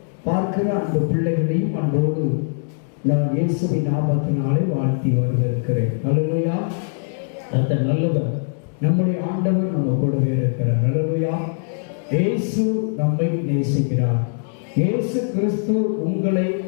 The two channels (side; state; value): right; silent; digital silence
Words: பார்க்கிற அந்த பிள்ளைகளையும் அன்போடு நான் இயேசுவின் நாமத்தினாலே வாழ்த்தி வரவேற்கிறேன். அல்லேலூயா. அந்த நல்லவர் நம்முடைய ஆண்டவர் நம்ம கூடவே இருக்கிறார். அல்லேலூயா. இயேசு நம்மை நேசிக்கிறார். இயேசு கிறிஸ்து உங்களை